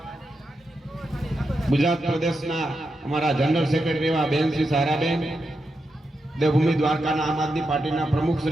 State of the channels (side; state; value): both; normal; correlation 0.86